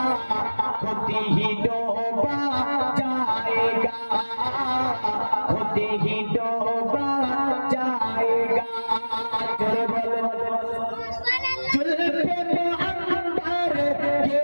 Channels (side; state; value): both; inverted; correlation -1.00